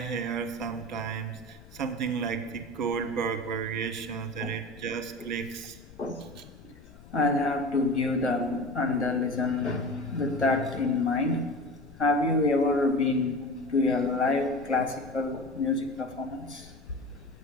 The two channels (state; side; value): noise; left; rumble, 20 dB below the sound